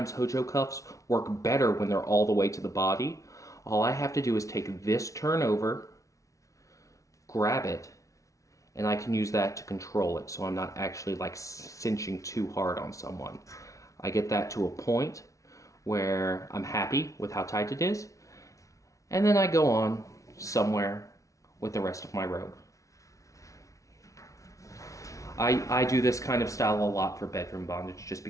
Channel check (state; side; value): late; right; 0.16 ms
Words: Hojo cuffs work better when they're all the way to the body. All I have to do is take this turn over, grab it, and I can use that to control it, so I'm not actually like cinching too hard on someone. I get that to a point where I'm happy with how tight it is, and then I go on somewhere with the rest of my rope. I do this kind of style a lot for bedroom bondage just